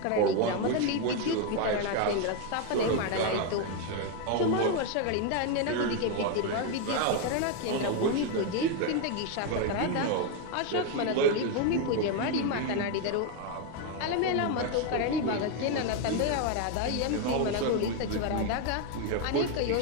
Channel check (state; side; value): different; both; correlation 0.01